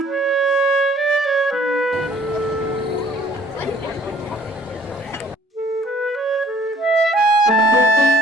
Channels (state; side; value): normal; both; correlation 0.56